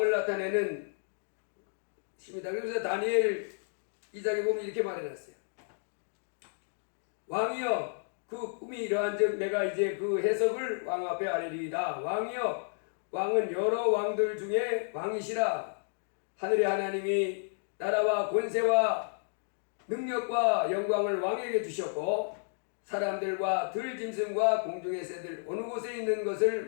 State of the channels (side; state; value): right; silent; digital silence